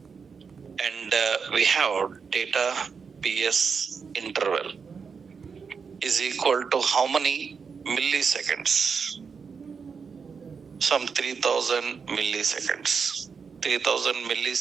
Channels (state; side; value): quieter; left; 5.7 dB